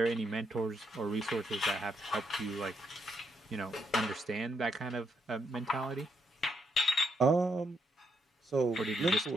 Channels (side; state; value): both; normal; correlation 0.76